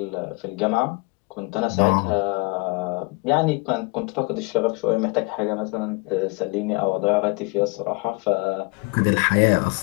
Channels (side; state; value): right; quieter; 29.4 dB